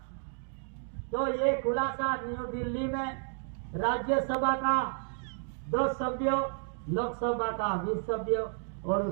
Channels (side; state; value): left; silent; 57 dB below the other